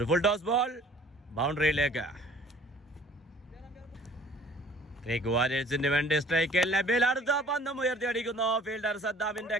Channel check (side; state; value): both; normal; correlation 0.52